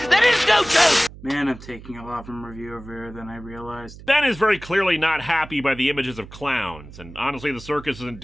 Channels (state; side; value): noise; right; hum, 17 dB below the sound